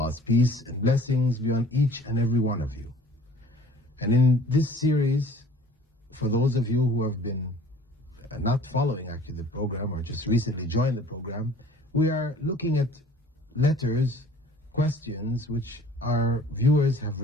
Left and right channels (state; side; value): normal; both; correlation 0.50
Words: peace and blessings be on each and every one of you. And in this series, for those of you who have been not following actually the program or just recently joined the program, we are looking at letters, questions which our viewers have